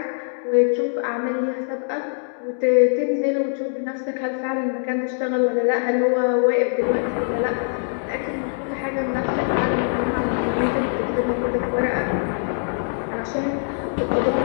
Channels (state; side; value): silent; right; digital silence